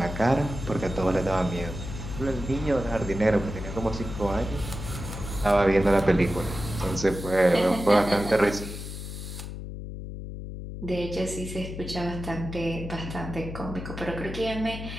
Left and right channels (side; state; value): left; noise; hum, 8 dB below the sound